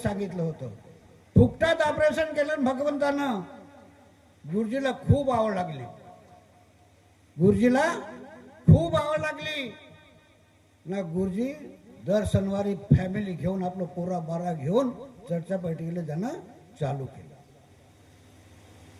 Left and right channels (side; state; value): both; identical; correlation 1.00